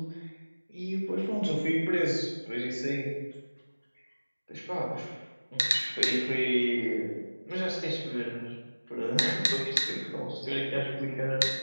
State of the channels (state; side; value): inverted; both; correlation -1.00